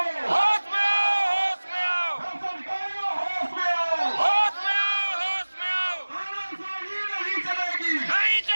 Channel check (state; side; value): inverted; both; correlation -1.00